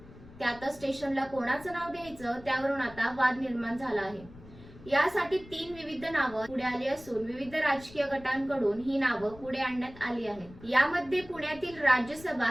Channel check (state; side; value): noise; left; rumble, 19 dB below the sound